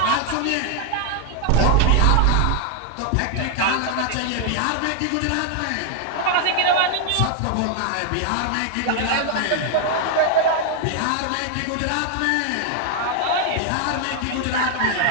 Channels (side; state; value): both; different; correlation 0.00